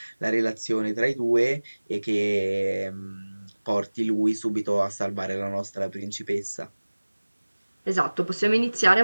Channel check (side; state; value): both; inverted; correlation -1.00